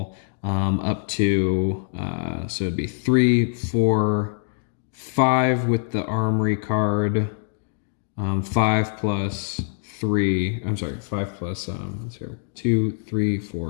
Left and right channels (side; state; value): right; silent; digital silence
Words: up to, so it'd be 3, 4, 5 with the Armory card, 5 plus 3, I'm sorry, 5 plus, 2, 3,